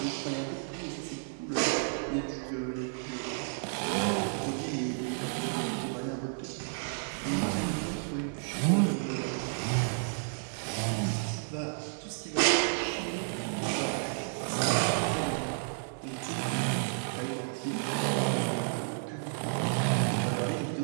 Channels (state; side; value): silent; left; 57 dB below the other